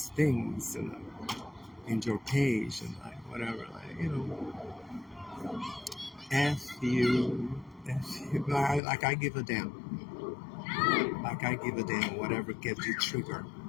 things in your page, and like, whatever, like, F you. Like, I give a damn. Like, I give a damn whatever gets you triggered.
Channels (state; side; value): drops out; right; at 8.8 s